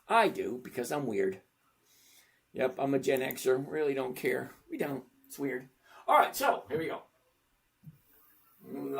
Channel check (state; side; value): identical; both; correlation 1.00